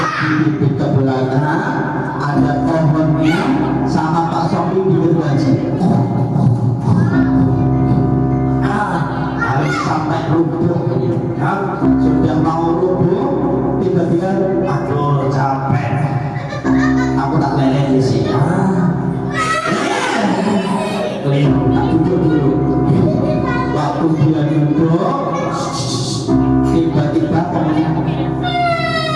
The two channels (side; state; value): both; identical; correlation 1.00